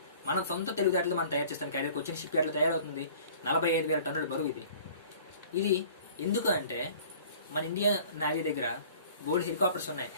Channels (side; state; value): both; inverted; correlation -0.48